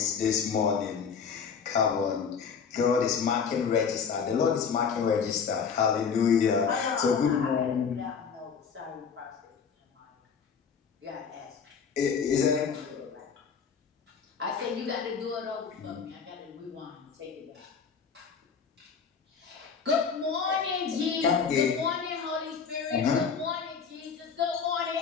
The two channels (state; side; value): quieter; right; 6.3 dB